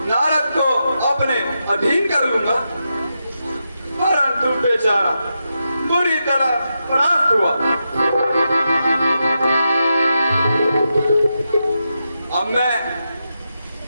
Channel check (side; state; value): both; inverted; correlation -0.87